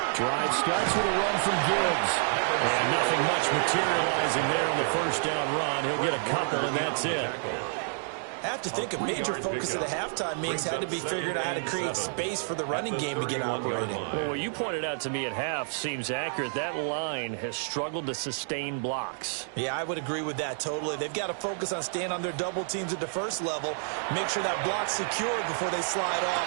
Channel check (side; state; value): left; silent; digital silence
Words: Drive starts with a run from Gibbs. And nothing much materializing there on the first down run. He'll get a couple, and that's it. I have to think a major focus of the halftime meetings had to be figuring out how to create space for the running game to get operating. Well, what you pointed out to me at half seems accurate. That line has struggled to sustain blocks. Yeah, I would agree with that totally. They've got to focus on staying on their double teams at the first level, make sure that block's secured before they slide